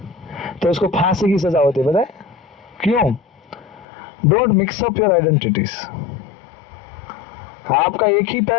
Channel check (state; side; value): drops out; right; at 3.9 s